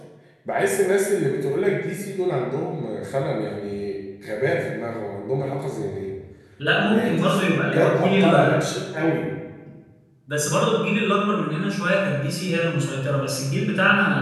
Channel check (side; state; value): both; identical; correlation 1.00